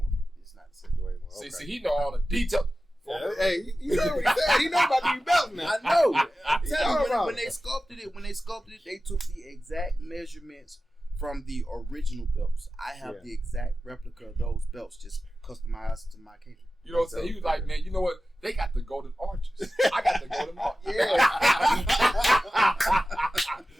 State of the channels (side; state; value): both; normal; correlation 0.94